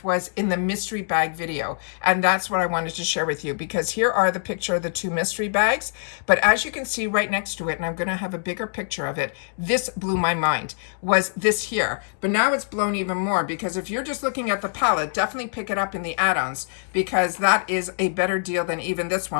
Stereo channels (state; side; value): silent; right; digital silence